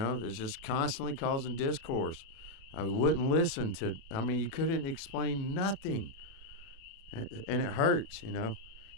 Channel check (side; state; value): right; late; 36 ms